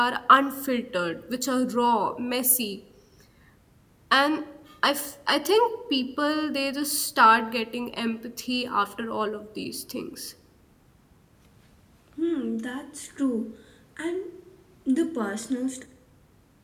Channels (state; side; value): identical; both; correlation 1.00